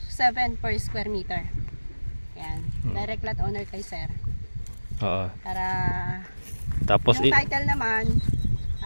per square meter. Yan. Direct lot owner kay sir. Oo. Para Tapos yung title naman,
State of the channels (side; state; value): both; inverted; correlation -1.00